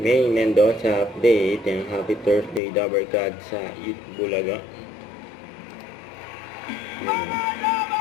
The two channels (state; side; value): drops out; right; at 2.6 s